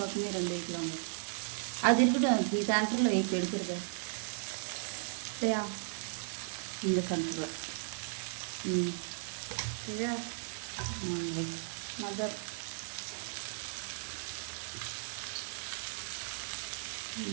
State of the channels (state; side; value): silent; left; digital silence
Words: 2 வைக்கலாம். அது இருக்கட்டும். நீ சென்டரில் வை. இப்போ எடுக்கிறது சரியா? இந்த சென்டரில். சரியா? வை. மதர்.